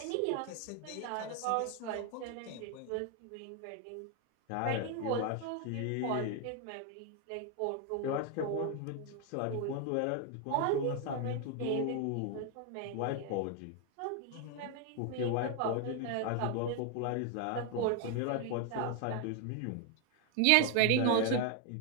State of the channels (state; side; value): different; both; correlation 0.01